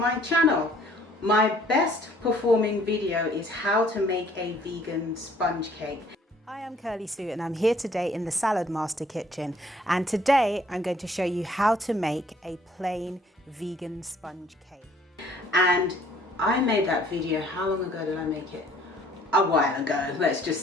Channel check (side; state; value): both; normal; correlation 0.59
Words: channel. My best performing video is how to make a vegan sponge cake. Hi, I'm Curly Sue and I'm here today in the Salad Master kitchen, and today I'm going to show you how to make a plain vegan sponge cake. And I made that video, how long ago did I make it? A while ago, let's just